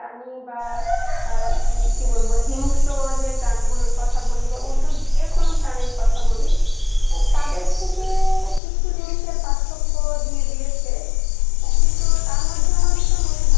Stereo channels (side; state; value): right; drops out; at 8.6 s